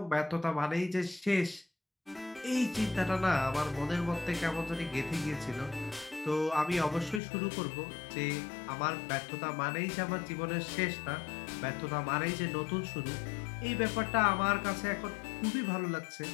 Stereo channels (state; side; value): drops out; right; at 7.2 s